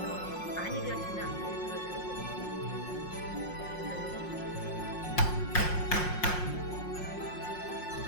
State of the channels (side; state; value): right; late; 5.6 ms